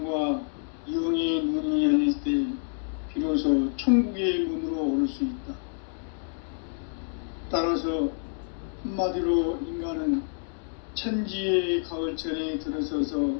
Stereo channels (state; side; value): silent; right; digital silence